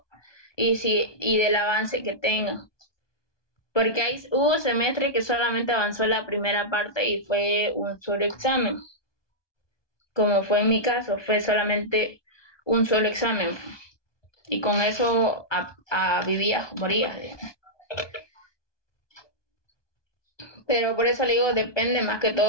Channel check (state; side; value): late; right; 1.2 ms